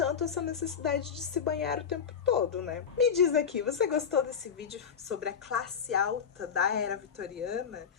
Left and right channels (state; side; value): quieter; right; 7.1 dB